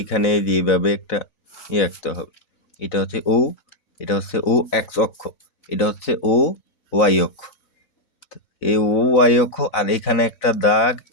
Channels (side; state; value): right; late; 4.0 ms